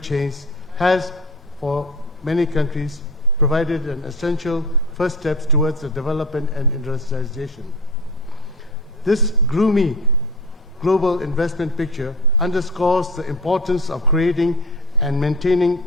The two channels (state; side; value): normal; both; correlation 0.31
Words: has, for many countries, provided an essential first steps towards the development and industrialization. This gloomy global investment picture underscores the importance of creating and